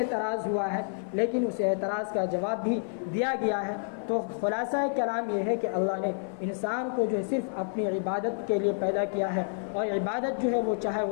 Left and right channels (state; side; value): silent; right; 55 dB below the other